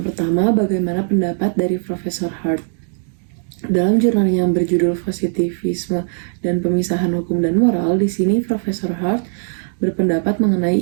pertama, bagaimana pendapat dari Profesor Hart? Dalam jurnal yang berjudul Positivisme dan Pemisahan Hukum dan Moral, di sini Profesor Hart berpendapat mengenai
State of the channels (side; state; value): left; silent; digital silence